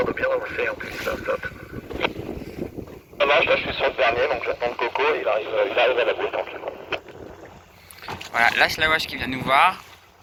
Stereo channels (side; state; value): both; identical; correlation 1.00